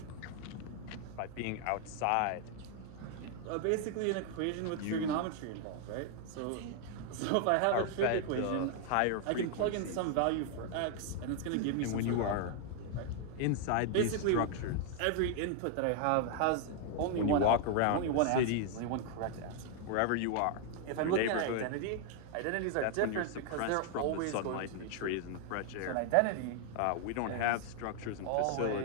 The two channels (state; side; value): different; both; correlation 0.00